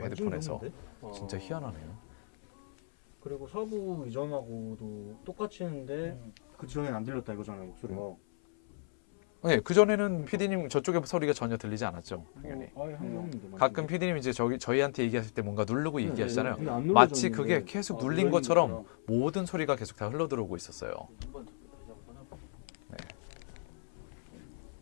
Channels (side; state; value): right; silent; 55 dB below the other